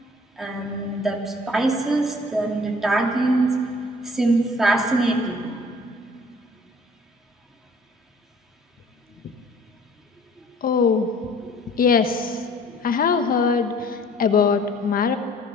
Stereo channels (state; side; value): normal; both; correlation 0.53